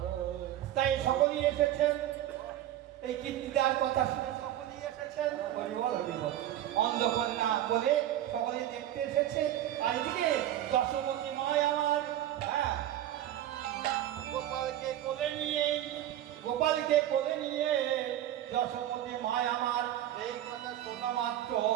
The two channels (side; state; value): left; quieter; 12.5 dB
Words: তাই সকলেই এসেছেন এই কীর্তিদার কথা শুনে, সকলেই এসেছেন হরিবল হরিবল, অন্ধকন্যা বলে সকলেই দেখতে দেখতে এসেছে, আর এদিকে যশোমতী মায় আমার হ্যাঁ গোপালকে কোলে নিয়ে যশোমতী মায় আমার এই কথা শোনা মাত্র